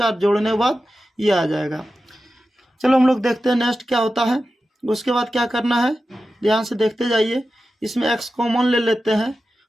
और जोड़ने के बाद ये आ जाएगा। चलो हम लोग देखते हैं नेक्स्ट क्या होता है। उसके बाद क्या करना है, ध्यान से देखते जाइए, इसमें x कॉमन ले लेते हैं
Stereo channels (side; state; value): both; normal; correlation 0.93